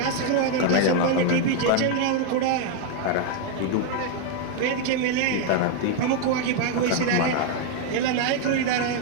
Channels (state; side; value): different; both; correlation 0.00